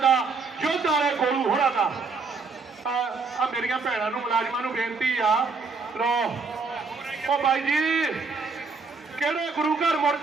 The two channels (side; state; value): left; quieter; 4.5 dB